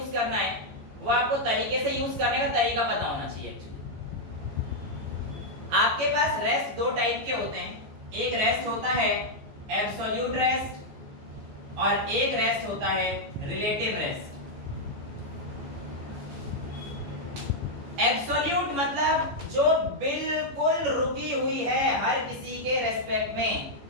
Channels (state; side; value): late; left; 14 ms